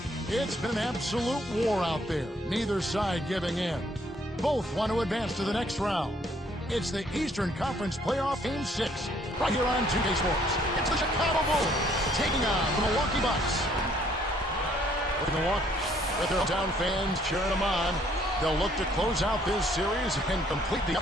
It's been an absolute war out there, neither side giving in. Both want to advance to the next round. It's the Eastern Conference Playoff Game 6, right here on 2K Sports. It's the Chicago Bulls taking on the Milwaukee Bucks. With Milwaukee, with their hometown fans cheering them on, they'll look to close out this series and complete the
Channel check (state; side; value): normal; both; correlation 0.64